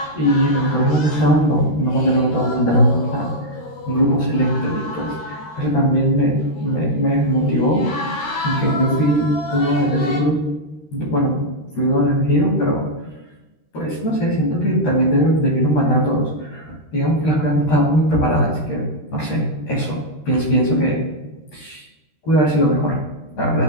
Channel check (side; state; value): right; late; 13 ms